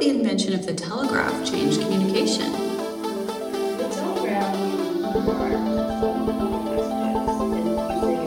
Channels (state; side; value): identical; both; correlation 1.00